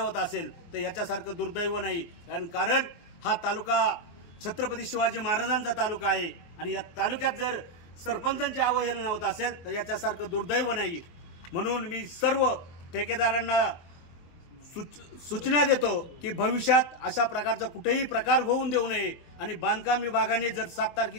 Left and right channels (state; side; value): late; right; 23 ms